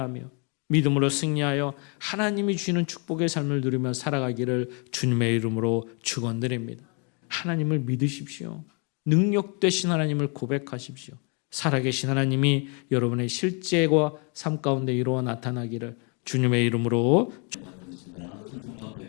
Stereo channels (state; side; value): quieter; right; 35.8 dB